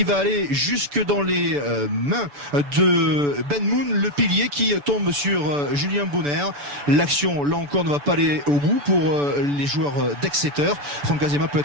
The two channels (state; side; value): late; left; 6.9 ms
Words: va aller jusque dans les mains de Ben Moon, le pilier qui tombe sur Julien Bonner. L'action là encore ne va pas aller au bout pour les joueurs d'Exeter. Franck Azema peut